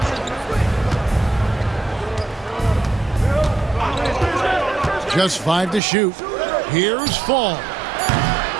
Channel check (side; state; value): left; drops out; at 5.8 s